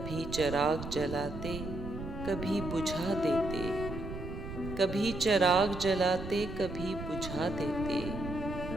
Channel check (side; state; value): right; noise; rumble, 8 dB below the sound